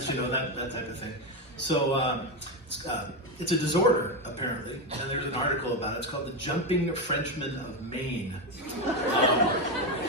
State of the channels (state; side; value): normal; both; correlation 0.11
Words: that type of thing. So it's a disorder, apparently, and there's an article about it. It's called the Jumping Frenchmen of Maine.